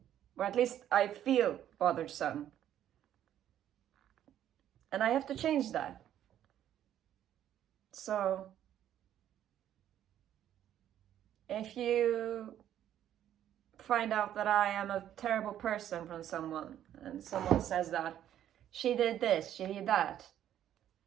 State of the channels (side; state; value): left; quieter; 11.1 dB